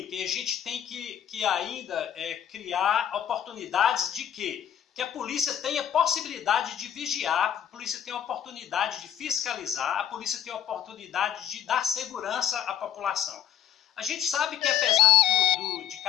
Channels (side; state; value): right; quieter; 9.9 dB